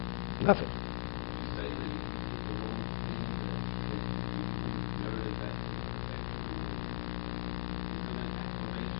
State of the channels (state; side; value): silent; right; 52 dB below the other